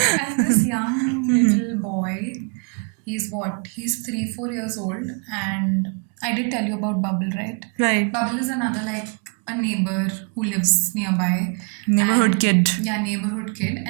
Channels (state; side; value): quieter; left; 38.0 dB